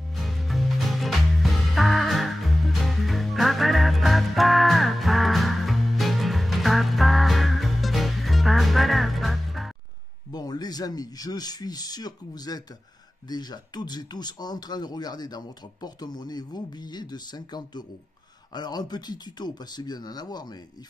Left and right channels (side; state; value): both; normal; correlation 0.96